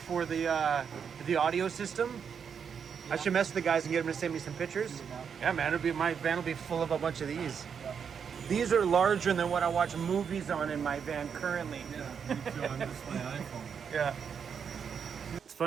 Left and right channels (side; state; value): left; quieter; 6.9 dB